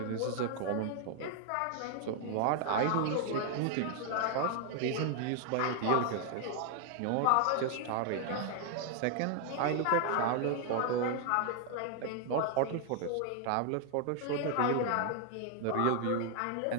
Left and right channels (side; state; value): both; different; correlation 0.00